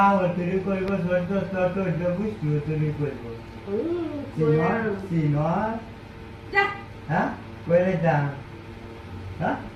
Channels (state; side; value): identical; both; correlation 1.00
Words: তুই কইব তোর বুঝতে তুই কইব সিনর যা হ্যাঁ কইলে যা হ্যাঁ